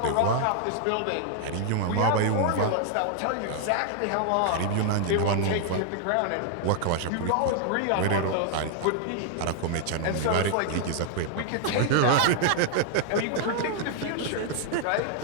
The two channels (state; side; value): different; both; correlation 0.00